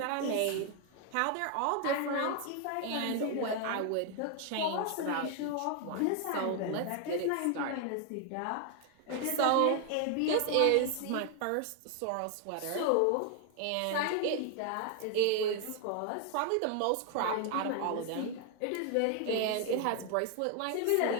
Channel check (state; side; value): different; both; correlation 0.01